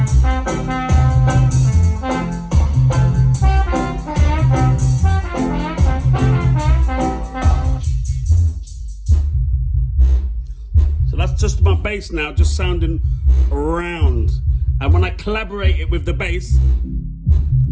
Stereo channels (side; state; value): both; identical; correlation 1.00